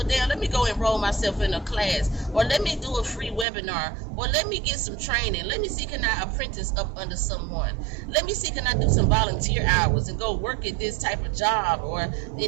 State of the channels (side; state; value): left; drops out; at 3.5 s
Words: damn, let me go enroll myself in a class, or let me do a free webinar, or let me get some training. Let me see, can I apprentice up under someone? Let me see, can I do some volunteer hours and go work at this type of job or